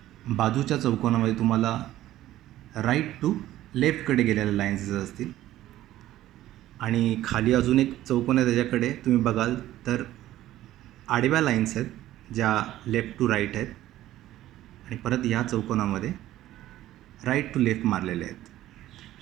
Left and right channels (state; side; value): quieter; left; 14.2 dB